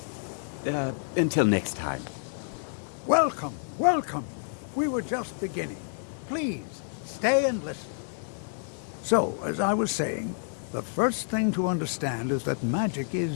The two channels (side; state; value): right; silent; 59 dB below the other